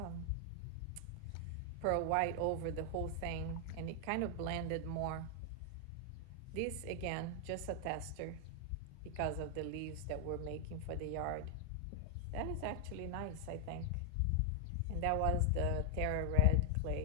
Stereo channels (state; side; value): different; both; correlation 0.00